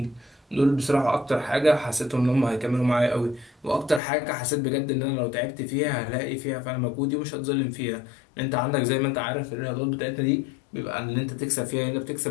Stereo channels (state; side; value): drops out; right; at 4.0 s